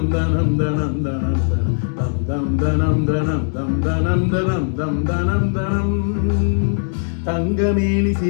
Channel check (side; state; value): right; silent; digital silence